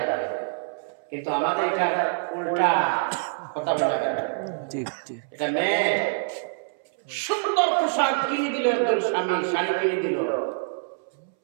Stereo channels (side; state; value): left; silent; 61 dB below the other